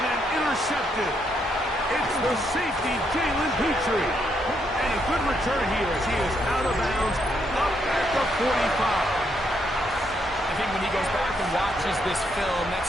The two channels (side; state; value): both; normal; correlation 0.76